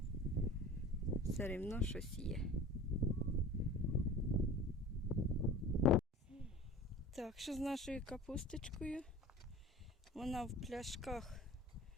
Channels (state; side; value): normal; both; correlation 0.40